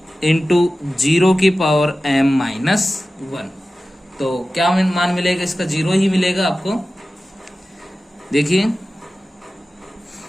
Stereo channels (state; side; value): normal; both; correlation 0.95